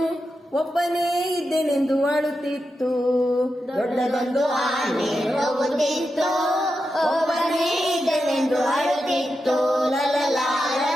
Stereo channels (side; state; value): both; normal; correlation 0.88